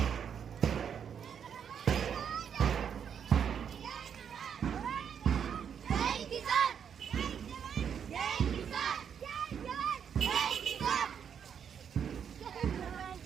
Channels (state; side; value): quieter; left; 7.8 dB